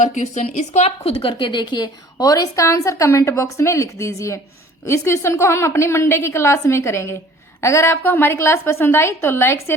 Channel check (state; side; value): normal; both; correlation 0.50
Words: क्वेश्चन, इसको आप खुद करके देखिए और इसका आंसर कमेंट बॉक्स में लिख दीजिए। इस क्वेश्चन को हम अपनी मंडे की क्लास में करेंगे। अगर आपको हमारी क्लास पसंद आई तो लाइक,